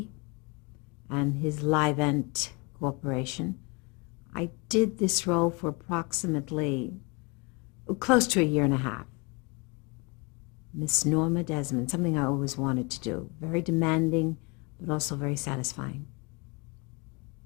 and his Livent Corporation. I did this role for approximately close to a year and a half. Miss Norma Desmond, something I always wanted to do. Very demanding, but also very satisfying.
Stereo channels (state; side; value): quieter; right; 29.4 dB